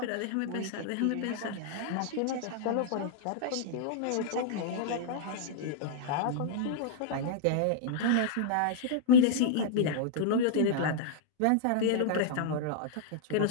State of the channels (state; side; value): different; both; correlation -0.02